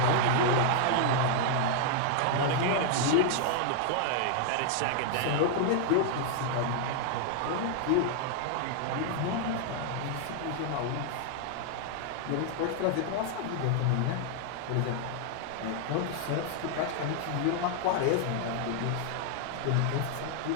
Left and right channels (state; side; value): different; both; correlation 0.00